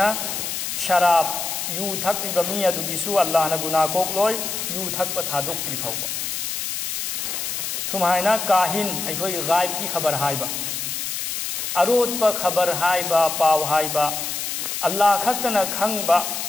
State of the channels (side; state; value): left; noise; hiss, 3 dB below the sound